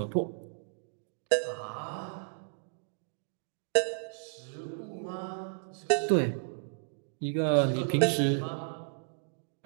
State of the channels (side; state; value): left; silent; digital silence